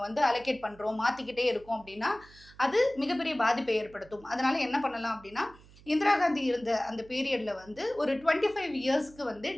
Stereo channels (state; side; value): noise; right; hum, 23 dB below the sound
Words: வந்து அலோகேட் பண்றோம், மாத்திக்கிட்டே இருக்கோம் அப்படின்னா, அது மிகப்பெரிய பாதிப்பை ஏற்படுத்தும். அதனால என்ன பண்ணலாம் அப்படின்னா, இந்திரா காந்தி இருந்த அந்த பீரியட்ல வந்து ஒரு 25 இயர்ஸ்க்கு வந்து